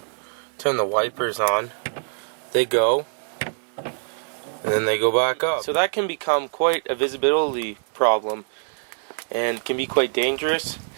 turn the wipers on, they go, and then they go back up. So that can become quite a visibility problem, and can be quite dangerous.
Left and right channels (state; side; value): silent; left; 63 dB below the other